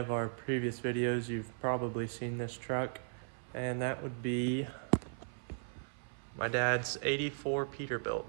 our previous videos, you've probably seen this truck, and that would be my dad's 84 Peterbilt.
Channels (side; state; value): left; silent; 53 dB below the other